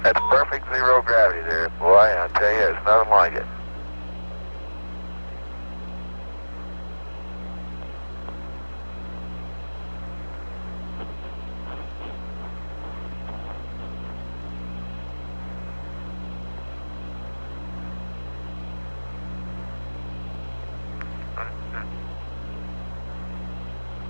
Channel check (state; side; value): inverted; both; correlation -1.00